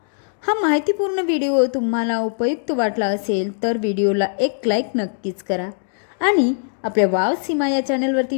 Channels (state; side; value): silent; right; digital silence